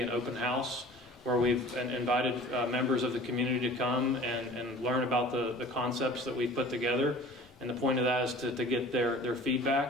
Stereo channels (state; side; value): normal; both; correlation 0.45